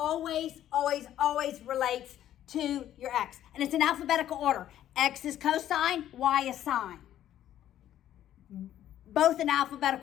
always, always relates to your x. And it's in alphabetical order. X is cosine, y is sine. Both in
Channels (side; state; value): right; quieter; 11.8 dB